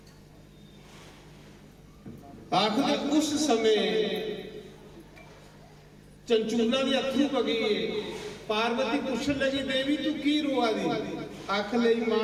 आखिर उस समय चंचूला के अथरू पगी, पार्वती पूछन लगी देवी तू की रोआ दी? आख लई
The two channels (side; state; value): both; identical; correlation 1.00